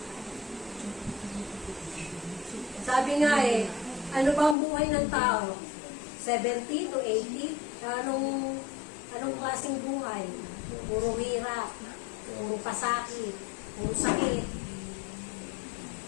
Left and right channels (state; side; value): drops out; right; at 4.5 s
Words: Sabi nga ano ba ang buhay ng tao? 70 to 80? Anong klaseng buhay? Puro hirap, puro pasakit, puro sakit.